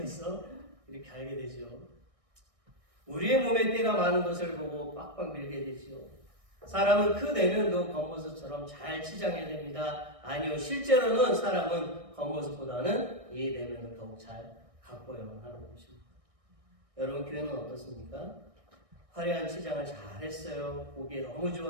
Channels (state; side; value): late; left; 1.6 ms